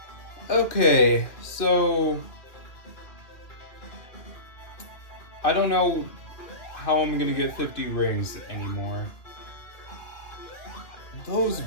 Okay, so... I don't know how I'm gonna get 50 rings anymore. Those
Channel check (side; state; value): right; late; 2.2 ms